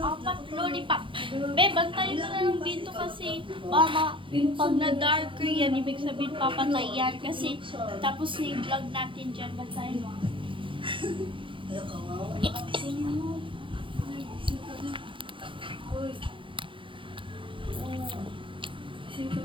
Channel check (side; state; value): left; late; 0.25 ms